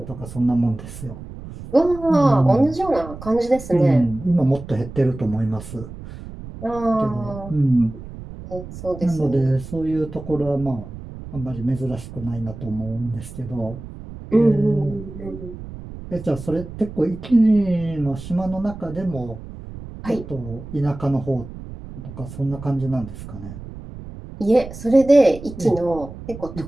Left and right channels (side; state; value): right; noise; rumble, 13 dB below the sound